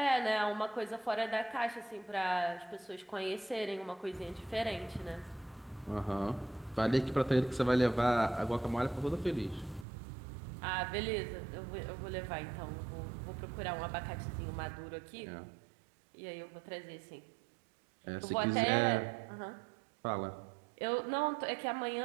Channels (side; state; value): left; drops out; at 9.9 s